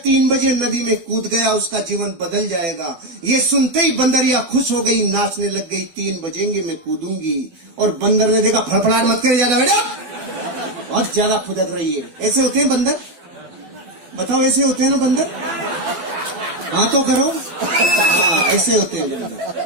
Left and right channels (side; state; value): left; late; 12 ms